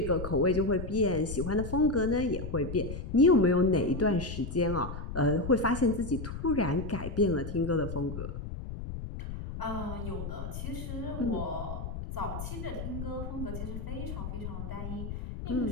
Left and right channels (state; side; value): noise; left; rumble, 7 dB below the sound